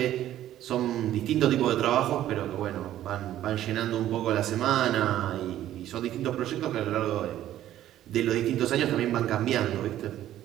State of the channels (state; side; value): quieter; left; 12.7 dB